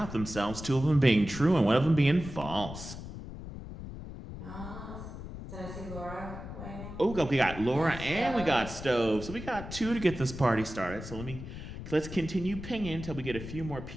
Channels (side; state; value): left; noise; rumble, 10 dB below the sound